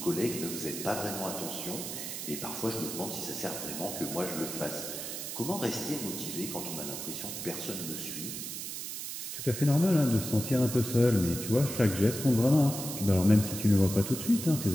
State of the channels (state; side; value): noise; right; hiss, 6 dB below the sound